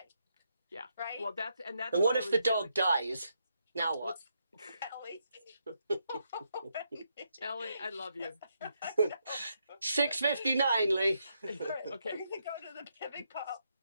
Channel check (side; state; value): both; inverted; correlation -0.79